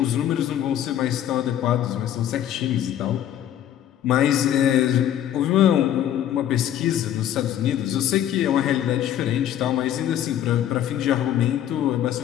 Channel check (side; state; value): right; quieter; 10.9 dB